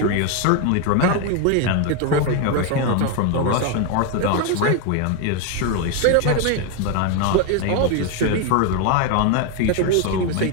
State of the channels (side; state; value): both; different; correlation 0.01